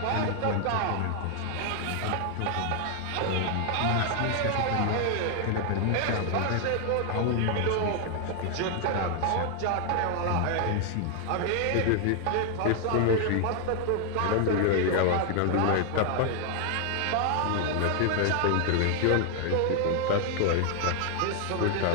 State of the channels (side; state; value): both; different; correlation 0.00